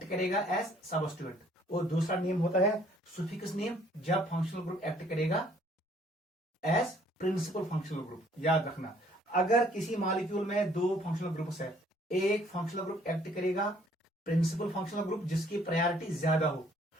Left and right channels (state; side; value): normal; both; correlation 0.61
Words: करेगा एज सबस्टिट्यूएंट, और दूसरा नेम होता है सुफिक्स नेम जब फंक्शनल ग्रुप एक्ट करेगा एज प्रिंसिपल फंक्शनल ग्रुप। याद रखना, अगर किसी मॉलिक्यूल में दो फंक्शनल ग्रुप्स है, एक फंक्शनल ग्रुप एक्ट करेगा प्रिंसिपल फंक्शनल ग्रुप जिसकी प्रायोरिटी ज्यादा हो,